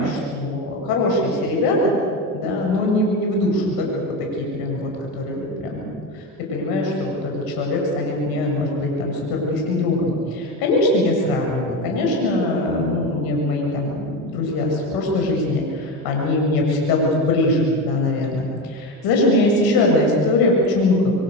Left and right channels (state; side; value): normal; both; correlation 0.19